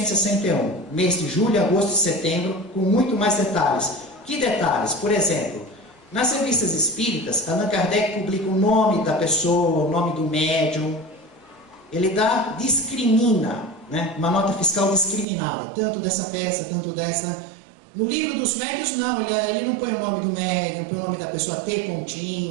mês de julho, agosto e setembro, com muito mais detalhes. Que detalhes? Por exemplo, nas revistas espíritas, Allan Kardec publica o nome da pessoa, o nome do médium. Ele discrimina, né? Uma nota fiscal discriminada, tanto dessa peça, tanto dessa. No livro dos médiuns, não, ele não põe o nome do médium, põe o nome da pessoa T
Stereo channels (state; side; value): drops out; left; at 15.2 s